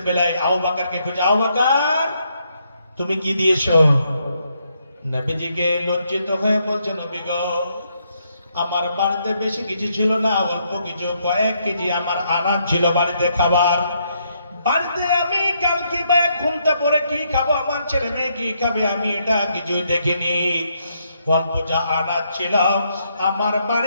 বেলায় আবু বকরকে খুঁজে, আবু বকর তুমি কি দিয়েছো? নবীজিকে লজ্জিত হয়ে বলছে, নবী গো, আমার বাড়িতে বেশি কিছু ছিল না, অল্প কিছু, কয়েক কেজি আমার আনাজ ছিল বাড়িতে খাবার। বাড়িতে আমি কালকে বা ঘুমটা পরে কি খাবো, আমার ছেলে মেয়ে কি খাবে, আমি এটা কিছুই দেখিনি। অল্প যা আনাজ ছিল আমার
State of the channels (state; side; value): inverted; both; correlation -0.75